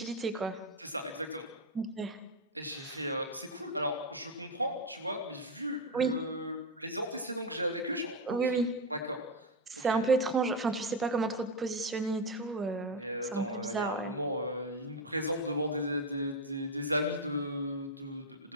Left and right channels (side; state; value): both; normal; correlation 0.07